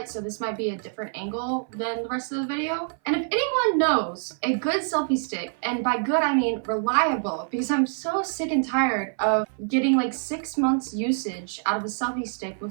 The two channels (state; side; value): silent; left; 57 dB below the other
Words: So this might be a different angle than the rest of the video. And if anyone knows a good selfie stick, and by good I mean reliable, because I'm so sick and tired of getting like 6 months usage out of a selfie stick